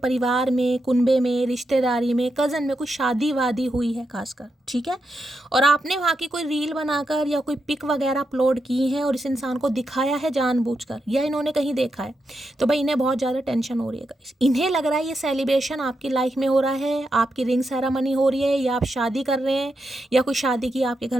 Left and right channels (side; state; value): both; normal; correlation 0.85